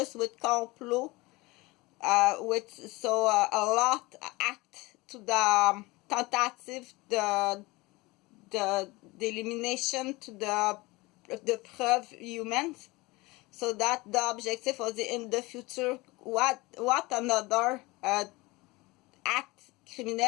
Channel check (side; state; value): right; quieter; 22.6 dB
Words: with complot. With so a lot act to the tentative the elimination to the preuve humans, so that the objective was in the future what another act